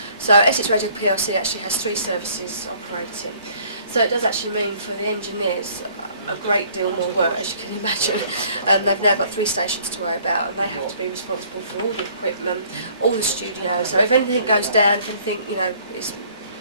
So Essex Radio PLC actually has 3 services operating. So it does actually mean for the engineers a great deal more work, as you can imagine. They've now got 3 stations to worry about, and they have to be responsible for all the equipment, all the studios. So if anything goes down, if anything, it's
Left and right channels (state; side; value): inverted; both; correlation -0.58